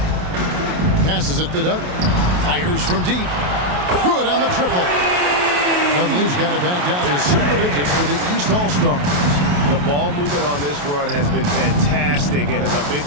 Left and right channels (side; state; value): left; late; 28 ms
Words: Passes it to Dudley. Fires from deep. Good on the triple. Dudley's got it back down to single digits for the East All-Stars. The ball movement on this run has been fantastic and is a big